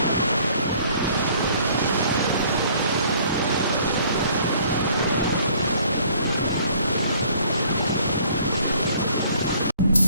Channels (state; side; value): inverted; both; correlation -0.58